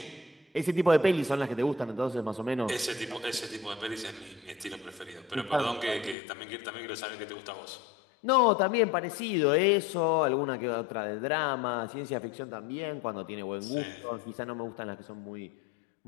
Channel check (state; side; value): drops out; right; at 6.2 s